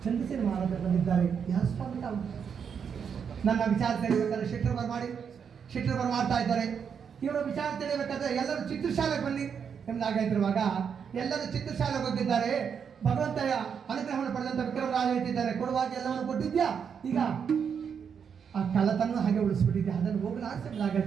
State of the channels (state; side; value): quieter; left; 7.0 dB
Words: ಚಂದ್ರಸೇನ ಮಹಾರಾಜ ಬಂದಿದ್ದಾರೆ. ಯಾರು ಸ್ವಾಮಿ ತಾವು ನನ್ನ ವಿಚಾರ ತಿಳಿಬೇಕಾದ್ರೆ ಶೆಟ್ಟರ್ ಬರ ಮಾಡ್ತಾ ಇದ್ದಾರೆ. ಇವರ ವಿಚಾರ ತಿಳಿಬೇಕಾದ್ರೆ ಎಲ್ಲರೂ ಚಿತ್ರಶಾಲೆಗೆ ಬನ್ನಿ ಎಂಬುದಾಗಿರುವಾಗ ಎಲ್ಲರೂ ಚಿತ್ರಶಾಲೆಗೆ ಹೋಗಿದ್ದಾರೆ. ಭಗವಂತಯ ಅನುಗ್ರಹವನ್ನು ಪಡೆದಂತ ವಿಕ್ರಮರಾಜ ಹೇಳ್ತಿದ್ದಾರೆ, ಕೊಡುವಾಗ ಎಲ್ಲವನ್ನು ಕೊಟ್ಟಿದ್ಯಾ, ಈಗ ಆ ಕಳ್ಳತನ ಹಾಗೆ ಉಳಿಸ್ಬಿಟ್ಟಿದ್ದೆ, ಅದನ್ನು